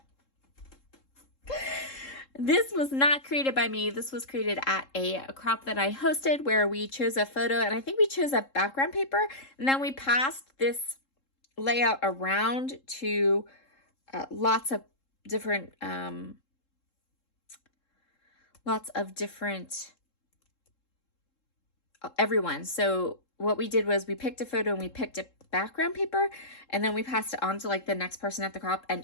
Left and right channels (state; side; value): late; right; 3.7 ms